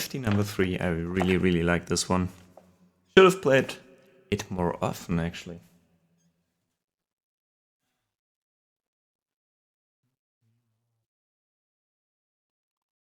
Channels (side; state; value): both; identical; correlation 1.00